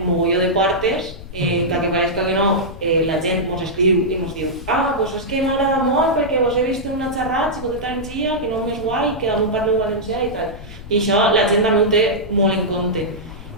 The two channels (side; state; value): left; noise; rumble, 14 dB below the sound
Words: mogolló de portes, que pareixca que no, la gent ens escriu i ens diu doncs és que m'agrada molt perquè vos he vist en una xerrada, Xicoteta Energia, que no és guai, que damunt parleu valencià i tal. I això la gent també ho té molt en compte.